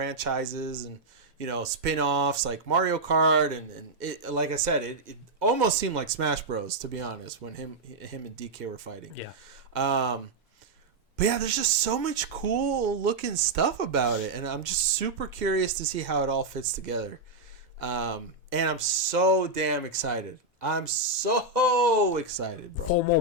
and, spin-offs like Mario Kart. And it, like I said, it almost seemed like Smash Bros, to be honest, when him and DK were fighting. Yeah. But yeah, there's just so much cool-looking stuff about it. And I'm just super curious to see how it all fits together. And I'm so damn excited. I'm so excited, bro. 4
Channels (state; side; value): quieter; left; 3.1 dB